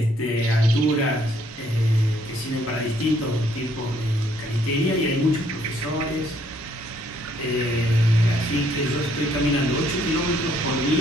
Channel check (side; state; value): both; normal; correlation 0.67